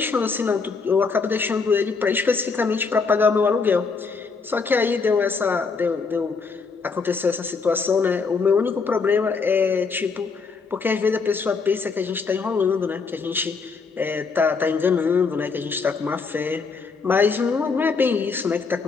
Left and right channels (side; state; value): right; quieter; 4.8 dB